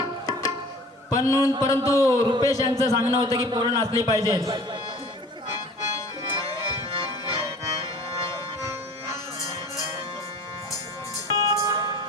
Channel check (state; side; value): normal; both; correlation 0.46